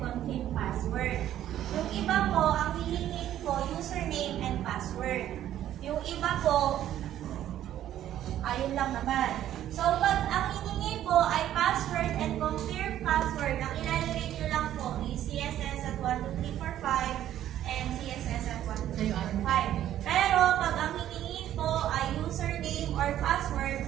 password. Yung iba po, ang hihingin po, username and password. Yung iba po, ayun lang naman. So, pag ang hihingi po ay password and confirm password, ang ilalagay nyo lang po is CSS at 12345 and CSS at 12345. Pero, pag ang hihingi po ay username or password,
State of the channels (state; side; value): quieter; left; 11.9 dB